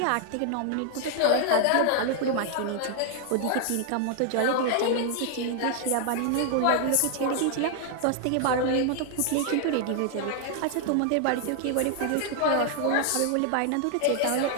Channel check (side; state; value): both; different; correlation 0.00